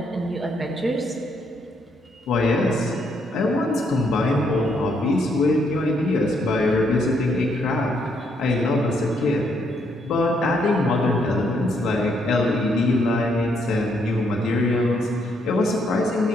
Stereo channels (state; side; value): normal; both; correlation 0.74